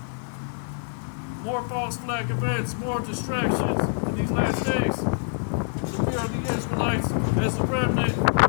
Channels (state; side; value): silent; right; digital silence